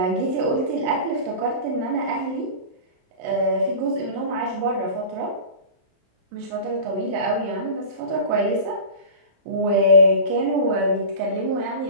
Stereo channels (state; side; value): late; left; 27 ms